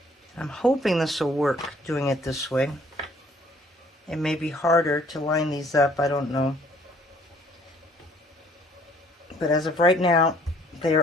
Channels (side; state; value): both; normal; correlation 0.59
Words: I'm hoping this will work doing it this way. It may be harder to line these up, I don't know. But as of right now, they